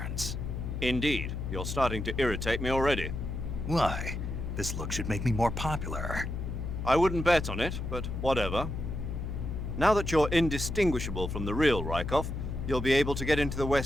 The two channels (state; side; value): noise; left; hum, 4 dB below the sound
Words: Indeed, you're starting to irritate me already. Why? This look should make me more popular. I wouldn't bet on it, but whatever. Now that you're indistinguishable from the real Rykov, you'll be able to get into the